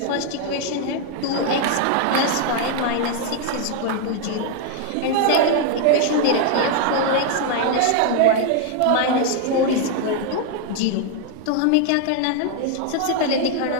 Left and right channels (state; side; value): different; both; correlation 0.00